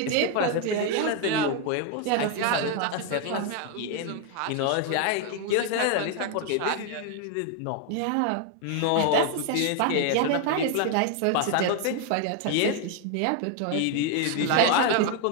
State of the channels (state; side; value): different; both; correlation 0.01